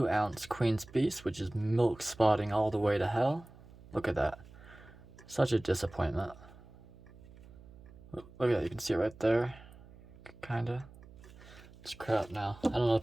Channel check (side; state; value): right; noise; hum, 20 dB below the sound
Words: ounce Queen's Beast, which is milk spotting all the way to hell. Look at that. Such a disappointment. Look at that, you can see it right there. Kinda. It's crap now. I don't know what